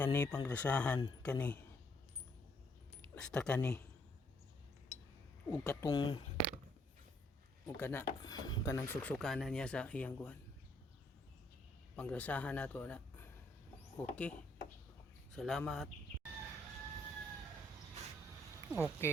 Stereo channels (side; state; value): both; normal; correlation 0.69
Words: panggrasahan kani. Basta kani. Ug katong ug kanang suksukanan niya sa iyang kuan. Panggrasahan nato na. Okay. Salamat.